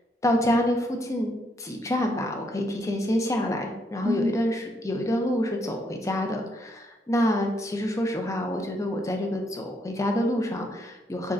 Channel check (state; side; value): normal; both; correlation 0.74